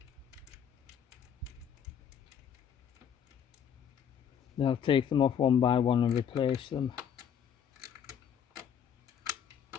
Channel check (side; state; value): right; quieter; 8.3 dB